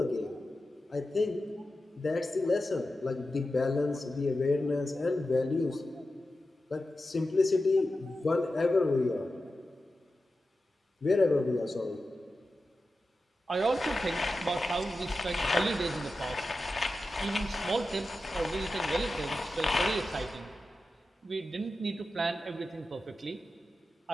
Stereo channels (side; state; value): both; normal; correlation 0.92